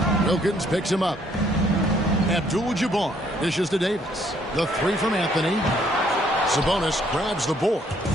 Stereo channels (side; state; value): both; normal; correlation 0.66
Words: Wilkins picks him up. Abdul-Jabbar dishes to Davis. The 3 from Anthony. Sabonis grabs the board.